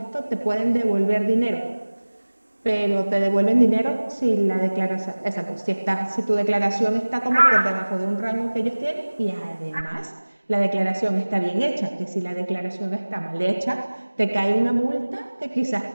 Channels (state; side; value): inverted; both; correlation -1.00